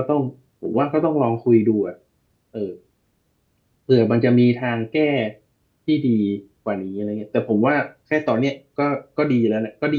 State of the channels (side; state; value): both; identical; correlation 1.00